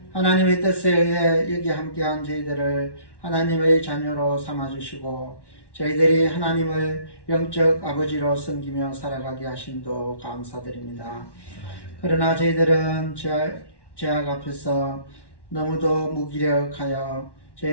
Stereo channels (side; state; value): right; late; 1.1 ms